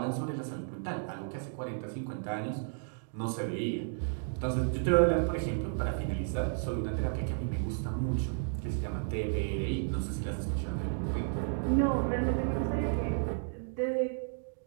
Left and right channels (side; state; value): left; silent; digital silence